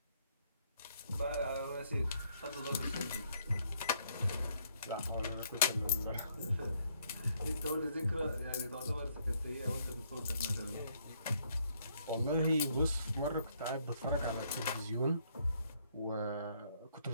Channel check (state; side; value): inverted; both; correlation -0.69